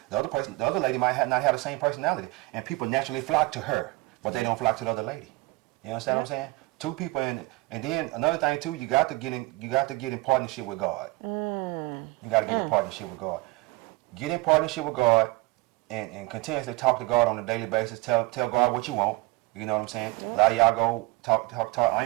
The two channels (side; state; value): left; quieter; 22.9 dB